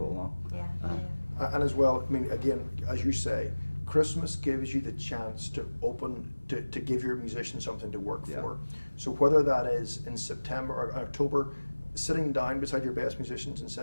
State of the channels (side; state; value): both; inverted; correlation -1.00